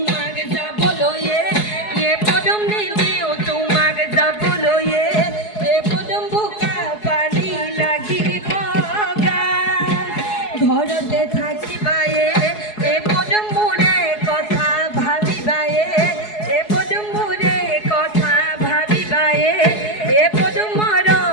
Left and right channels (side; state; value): right; late; 4.7 ms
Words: যা বলো এ কদম নি দিও তোমাক যা বলো এ কদম বোকা পানি লাগিব গা ঘৰতে থাকিবা এ কদম মোৰে কথা ভাবিবা এ কদম মোৰে কথা ভাবিবা এ কদম